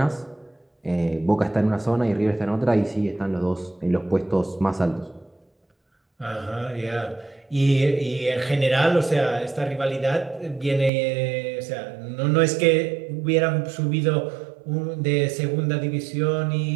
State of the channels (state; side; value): drops out; left; at 10.9 s